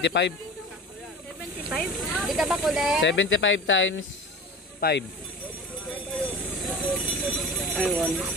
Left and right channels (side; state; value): both; normal; correlation 0.35